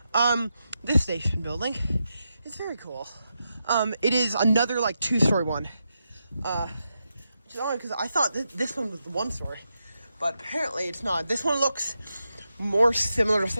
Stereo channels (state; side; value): inverted; both; correlation -0.87